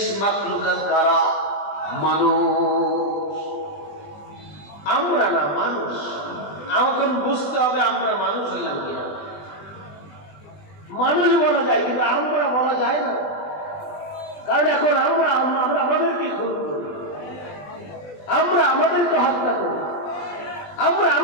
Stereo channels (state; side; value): late; right; 20 ms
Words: মাখলুকাত কারা? মানুষ। আমরা না, মানুষ। আমাকে বুঝতে হবে আমরা মানুষ হইলাম কিনা। মানুষ বলা যায় কিন্তু আমরা বলা যায় না, কারণ এখন আমরা আমাদেরকে খুন করি, আমরা আমাদেরকে হত্যা করি, আমরা